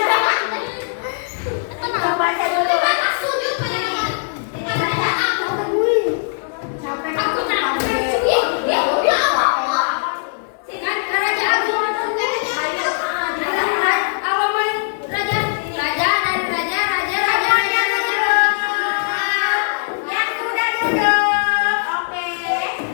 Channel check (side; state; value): right; silent; digital silence